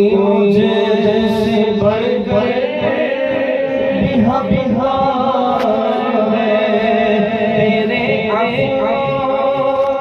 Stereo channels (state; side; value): identical; both; correlation 1.00